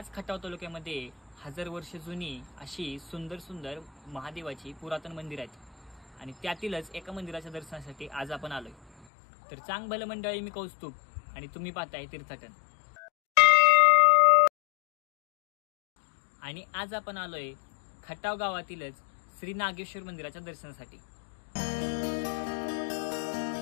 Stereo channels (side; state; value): right; drops out; at 9.1 s